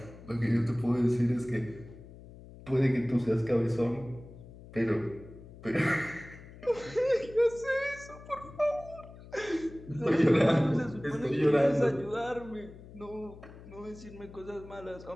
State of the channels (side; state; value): left; noise; hum, 18 dB below the sound